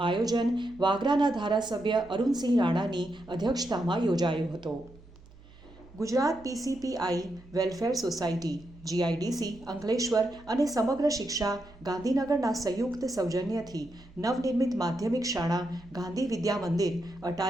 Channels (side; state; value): right; noise; hum, 23 dB below the sound